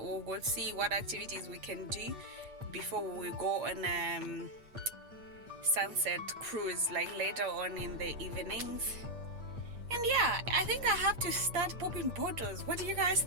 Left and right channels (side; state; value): left; late; 8.6 ms